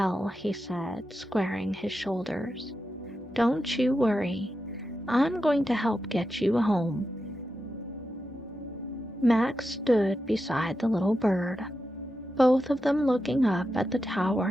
he said, squaring his shoulders, "don't you worry. I'm going to help get you home." Max stood beside the little bird, both of them looking up at the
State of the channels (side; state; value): both; normal; correlation 0.89